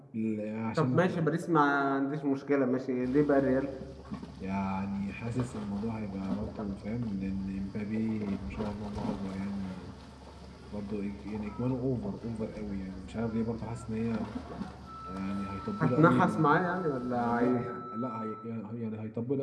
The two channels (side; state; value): both; identical; correlation 1.00